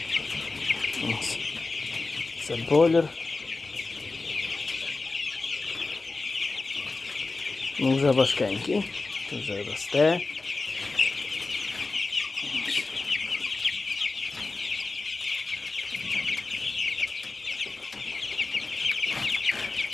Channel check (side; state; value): right; quieter; 3.6 dB